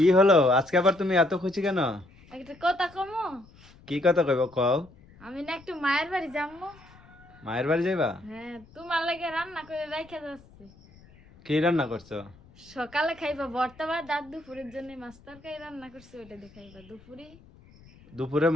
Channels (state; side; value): noise; left; rumble, 25 dB below the sound